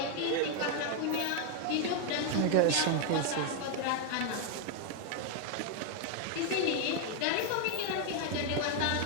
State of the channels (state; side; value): different; both; correlation 0.01